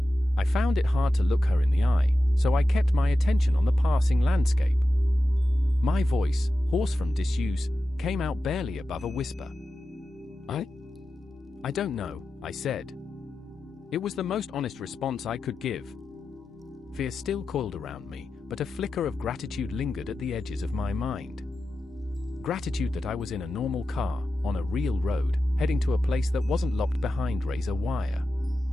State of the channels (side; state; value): both; normal; correlation 0.92